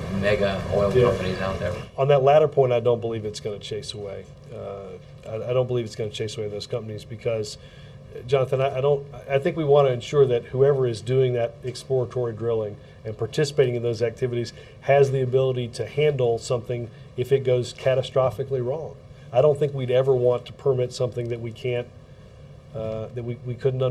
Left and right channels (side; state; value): both; identical; correlation 1.00